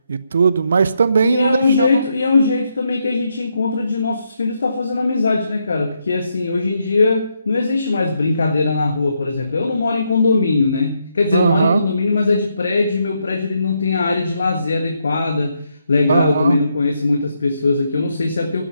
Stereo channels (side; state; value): both; inverted; correlation -0.79